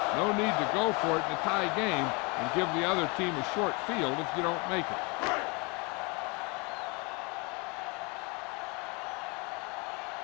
No need to go for it in a tie game and give the other team a short field if you don't make it.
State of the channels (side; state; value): right; quieter; 29.5 dB